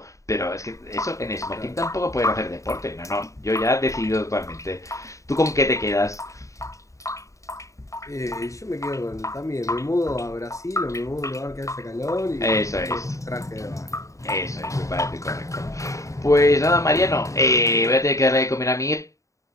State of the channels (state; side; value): late; right; 0.15 ms